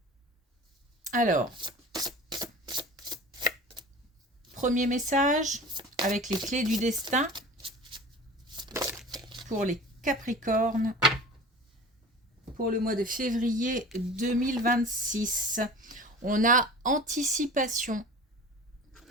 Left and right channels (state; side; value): normal; both; correlation 0.39